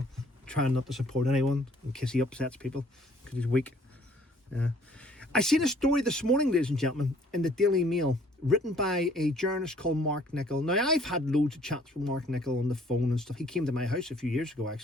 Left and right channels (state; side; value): normal; both; correlation 0.59